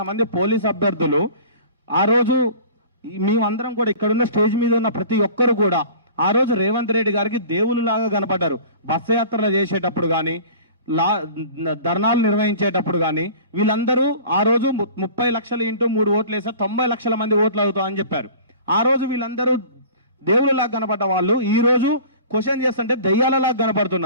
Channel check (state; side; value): inverted; both; correlation -0.43